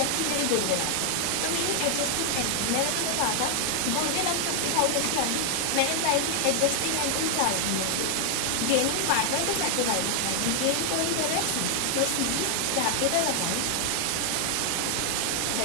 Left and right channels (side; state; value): both; different; correlation 0.00